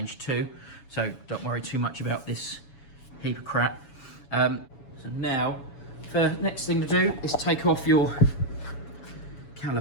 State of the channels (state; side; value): late; right; 7.1 ms